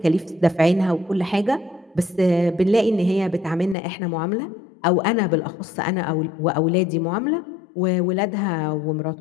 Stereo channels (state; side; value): drops out; right; at 3.8 s